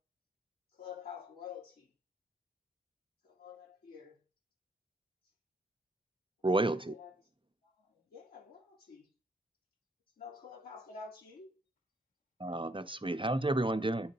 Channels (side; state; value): both; normal; correlation 0.69